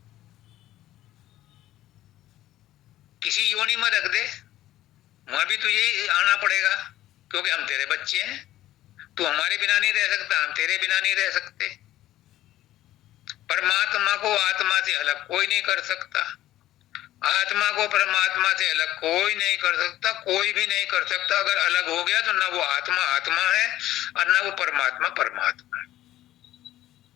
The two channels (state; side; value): quieter; right; 14.3 dB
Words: किसी योनि में रख दे, वहां भी तुझे आना पड़ेगा, क्योंकि हम तेरे बच्चे हैं। तू हमारे बिना नहीं रह सकता, हम तेरे बिना नहीं रह सकते। परमात्मा को आत्मा से अलग कोई नहीं कर सकता, आत्मा को परमात्मा से अलग कोई नहीं कर सकता, कोई भी नहीं कर सकता। अगर अलग हो गया तो ना वो आत्मा आत्मा है और ना वो परमात्मा परमात्मा है,